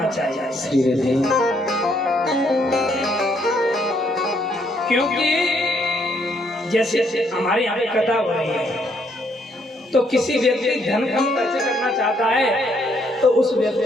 चाहिए। क्योंकि जैसे हमारे यहाँ पे कथा हो रही है, तो किसी व्यक्ति धन कम खर्च करना चाहता है तो उस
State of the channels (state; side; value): normal; both; correlation 0.71